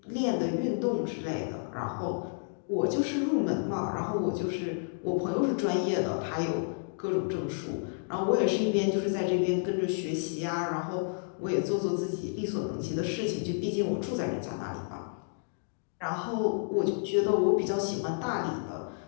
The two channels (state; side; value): silent; right; digital silence